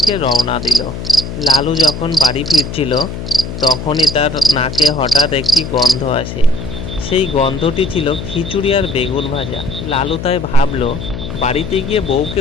রওনা দিল। লালু যখন বাড়ি ফিরছিল তখনই তার নাকে হঠাৎ একটি গন্ধ আসে। সেই গন্ধটি ছিল খিচুড়ি আর বেগুন ভাজা। লালু তাই ভাবলো বাড়িতে গিয়ে বউকে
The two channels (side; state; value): left; noise; hum, 8 dB below the sound